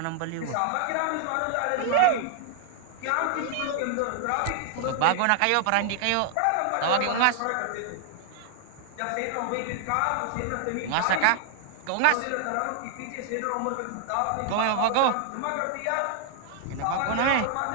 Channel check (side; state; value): both; different; correlation 0.00